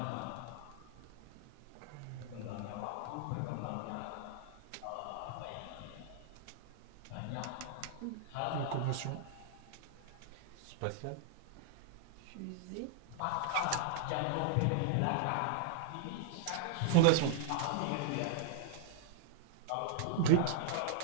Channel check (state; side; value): different; both; correlation -0.01